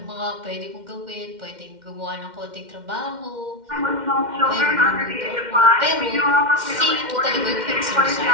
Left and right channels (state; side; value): late; left; 2.1 ms